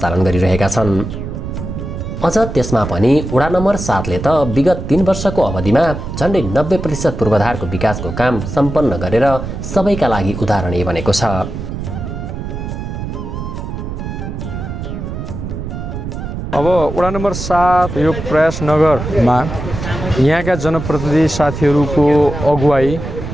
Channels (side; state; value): right; noise; rumble, 6 dB below the sound